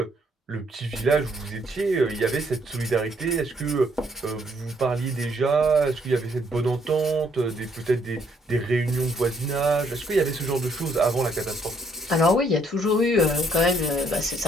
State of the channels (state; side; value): normal; both; correlation 0.69